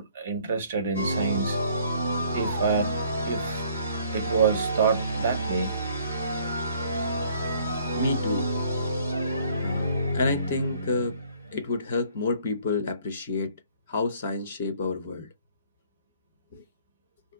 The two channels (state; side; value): inverted; both; correlation -0.59